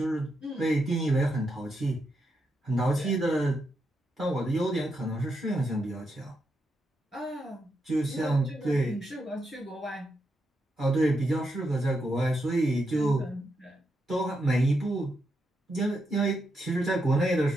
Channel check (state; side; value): normal; both; correlation 0.83